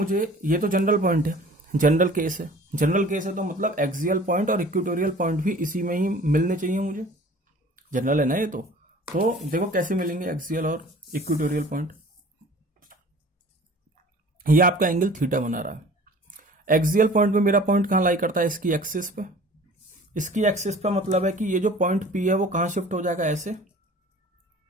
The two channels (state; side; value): normal; both; correlation 0.46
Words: ये तो जनरल पॉइंट है, जनरल केस है, जनरल केस है तो मतलब एक्सियल पॉइंट और इक्वेटोरियल पॉइंट भी इसी में ही मिलने चाहिए मुझे, जनरल है ना ये तो देखो कैसे मिलेंगे एक्सियल और इक्वेटोरियल पॉइंट। ये आपका एंगल थीटा बना रहा है, एक्सियल पॉइंट में मेरा पॉइंट कहां लाई करता है, इसकी एक्सिस पे, इसकी एक्सिस पे मतलब है कि ये जो पॉइंट पी है वो कहां शिफ्ट हो जाएगा, ऐसे।